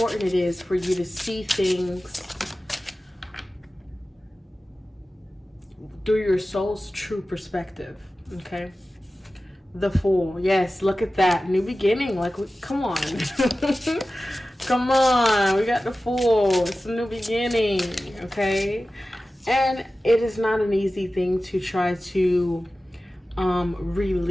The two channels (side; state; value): both; normal; correlation 0.95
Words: it is for you to see things through your soul's true perspective. Okay. The Fool. Yes, look at that. New beginning. Like, come on. Come on. We got the Fool. It's a new beginning. Okay. And it is not an easy thing to try to